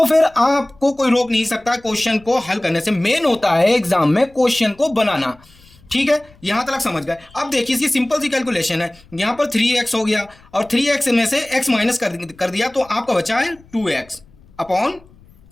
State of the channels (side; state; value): left; noise; rumble, 27 dB below the sound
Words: फिर आपको कोई रोक नहीं सकता क्वेश्चन को हल करने से। मेन होता है एग्जाम में क्वेश्चन को बनाना, ठीक है। यहां तक समझ गए। अब देखिए इसकी सिंपल सी कैलकुलेशन है, यहां पर 3x हो गया और 3x में से x माइनस कर दिया तो आपका बचा है